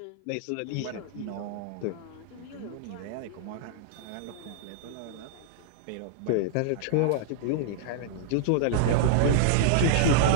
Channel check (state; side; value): different; both; correlation -0.01